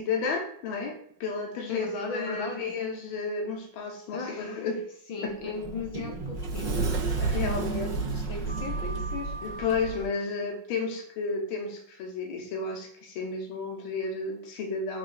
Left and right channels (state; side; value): late; right; 5.5 ms